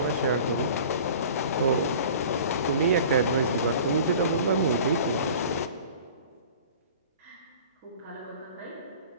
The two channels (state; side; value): inverted; both; correlation -0.43